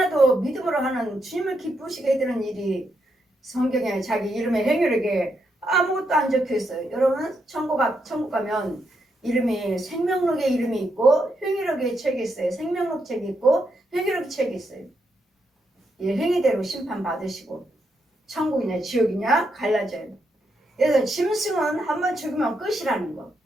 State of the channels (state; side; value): normal; both; correlation 0.80